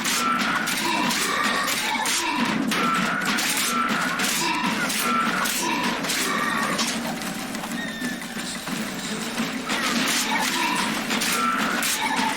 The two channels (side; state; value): left; noise; rumble, 25 dB below the sound